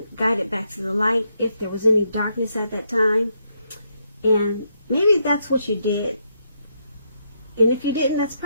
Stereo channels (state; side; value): inverted; both; correlation -0.77